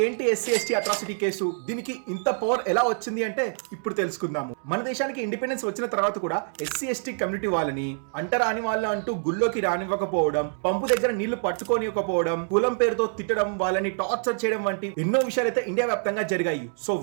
ఏంటి ఎస్సీ ఎస్టీ అట్రాసిటీ కేసు, దీనికి ఇంత పవర్ ఎలా వచ్చింది అంటే ఇప్పుడు తెలుసుకుందాము. మన దేశానికి ఇండిపెండెన్స్ వచ్చిన తర్వాత కూడా ఎస్సీ ఎస్టీ కమ్యూనిటీ వాళ్ళని అంటరాని వాళ్ళు అంటూ గుళ్ళోకి రానివ్వకపోవడం, పంపు దగ్గర నీళ్లు పట్టుకోనివ్వకపోవడం, కులం పేరు తిట్టడం, వాళ్ళని టార్చర్ చేయడం వంటి ఎన్నో విషయాలు అయితే ఇండియా వ్యాప్తంగా జరిగాయి. సో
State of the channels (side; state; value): left; silent; digital silence